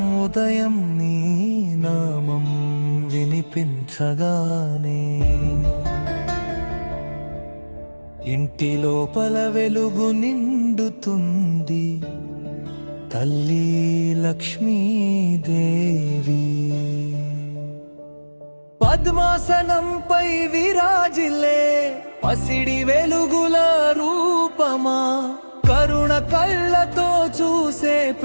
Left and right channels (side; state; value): both; inverted; correlation -1.00